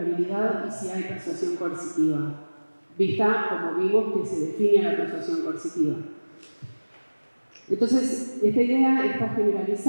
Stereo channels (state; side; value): inverted; both; correlation -1.00